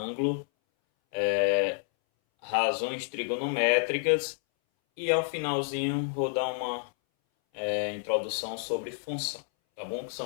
razões trigonométricas e ao finalzinho vou dar uma introdução sobre função, tá bom? Que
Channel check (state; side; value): silent; right; 58 dB below the other